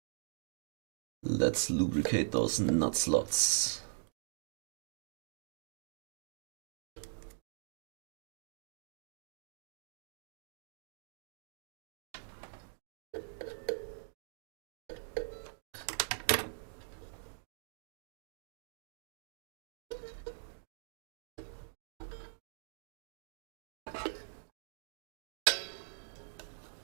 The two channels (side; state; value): left; silent; digital silence